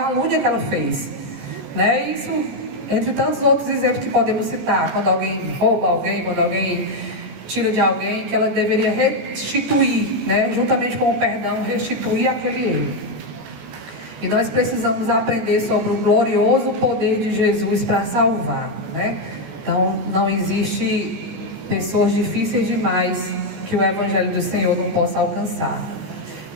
que ela fez. Né? Isso, entre tantos outros exemplos que podemos citar, quando alguém rouba alguém, quando alguém tira de alguém, que ela deveria restituir, né? Juntamente com o perdão, restituir aquele erro. E nós precisamos aprender sobre o glorioso poder de Jesus para salvar, né? Então, não existe pessoas difíceis demais que o Evangelho do Senhor não possa alcançar.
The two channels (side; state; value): left; late; 13 ms